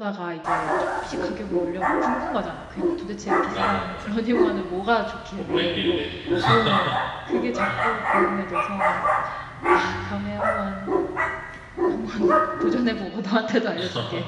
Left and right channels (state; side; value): identical; both; correlation 1.00